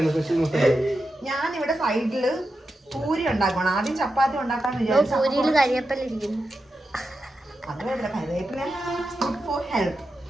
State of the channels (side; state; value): both; normal; correlation 0.89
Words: ഞാൻ ഇവിടെ സൈഡില് പൂരി ഉണ്ടാക്കണം. ആദ്യം ചപ്പാത്തി ഉണ്ടാക്കാന്ന് വിചാരിച്ചു. അത് വേണ്ട, കരിവേപ്പില ഗുഡ് ഫോർ ഹെൽത്ത്.